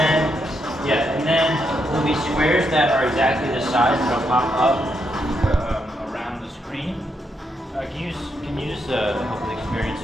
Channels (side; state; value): both; normal; correlation 0.80